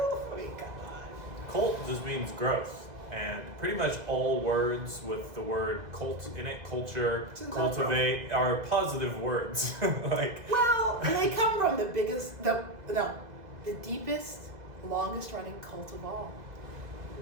I mean, come on. Cult just means growth. And pretty much all words with the word cult in it, culture, cultivate, are positive words. Well, they come from the deepest, longest running cult of all,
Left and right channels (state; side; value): late; left; 2.0 ms